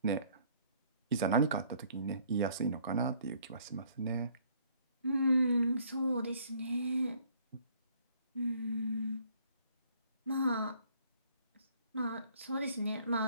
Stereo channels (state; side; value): inverted; both; correlation -0.61